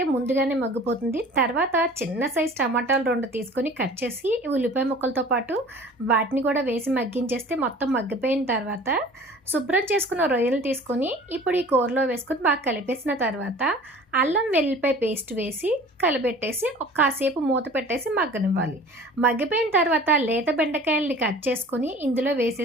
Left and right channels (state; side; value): normal; both; correlation 0.44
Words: ముందుగానే మగ్గిపోతుంది. తర్వాత చిన్న సైజు టమాటాలు 2 తీసుకొని కట్ చేసి ఉల్లిపాయ ముక్కలతో పాటు వాటిని కూడా వేసి మగ్గించేస్తే మొత్తం మగ్గిపోయిన తర్వాత శుభ్రం చేసుకున్న రొయ్యలు తీసుకొని ఇప్పుడు ఈ కూరలో వేసుకొని బాగా కలిపేసిన తర్వాత అల్లం వెల్లిపాయ పేస్ట్ వేసి కలిపెట్టేసి కాసేపు మూత పెట్టేసి మగ్గనివ్వాలి. మగ్గిపోయిన తర్వాత లేత బెండకాయల్ని కట్ చేసుకొని ఇందులో